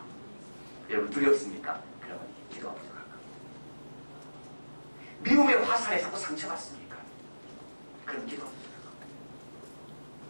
여러분 두렵습니까? 그러면 기도가 부족할 겁니다. 미움의 화살에 자꾸 상처받습니까? 그럼 기도가 부족할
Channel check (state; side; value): inverted; both; correlation -1.00